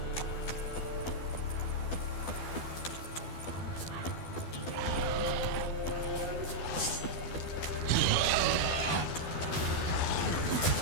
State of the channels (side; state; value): right; late; 12 ms